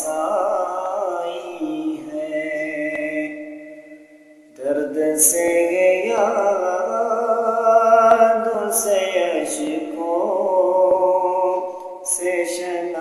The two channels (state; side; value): identical; both; correlation 1.00